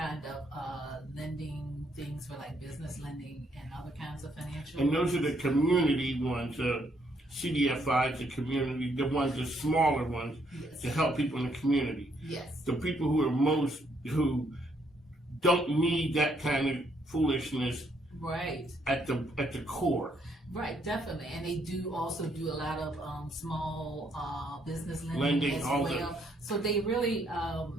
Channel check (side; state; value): both; normal; correlation 0.71